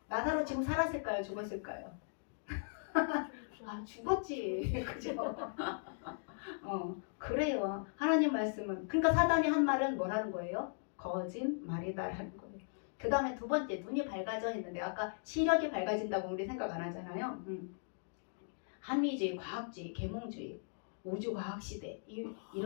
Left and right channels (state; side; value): silent; right; digital silence